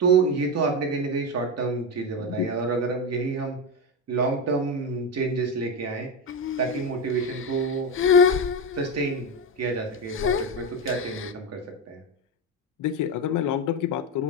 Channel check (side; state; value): both; normal; correlation 0.13